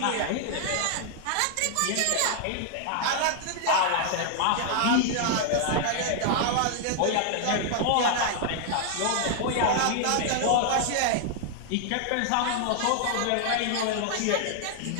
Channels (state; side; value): different; both; correlation 0.00